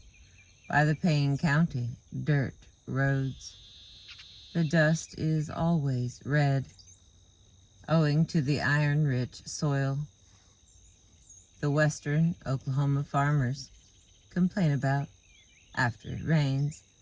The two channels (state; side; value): identical; both; correlation 1.00